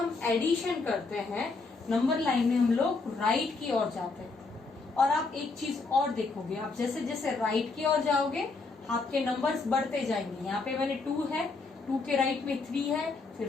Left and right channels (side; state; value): right; quieter; 3.9 dB